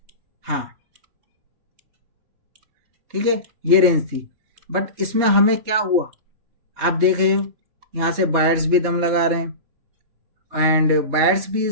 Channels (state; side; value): late; left; 3.3 ms